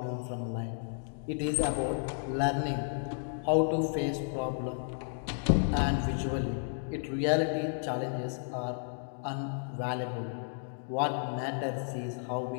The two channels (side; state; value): right; silent; digital silence